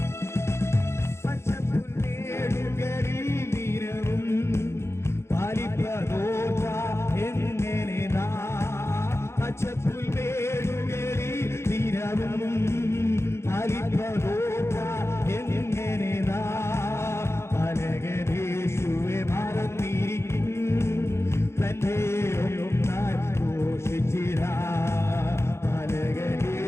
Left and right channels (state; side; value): late; right; 0.13 ms